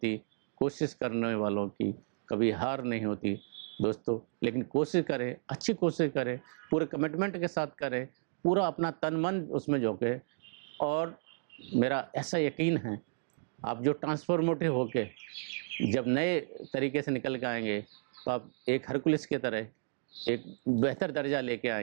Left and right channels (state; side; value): silent; left; digital silence